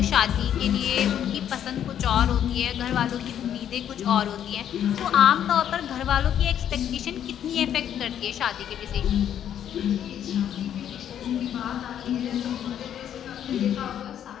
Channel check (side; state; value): right; quieter; 9.9 dB